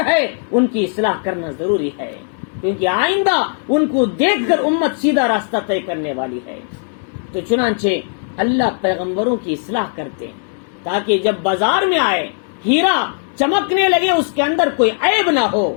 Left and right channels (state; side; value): silent; right; 58 dB below the other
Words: ہے، ان کی اصلاح کرنا ضروری ہے، کیونکہ آئندہ ان کو دیکھ کر امت سیدھا راستہ طے کرنے والی ہے۔ تو چنانچہ اللہ پیغمبروں کی اصلاح کرتے ہیں تاکہ جب بازار میں آئے، ہیرا چمکنے لگے، اس کے اندر کوئی عیب نہ ہو،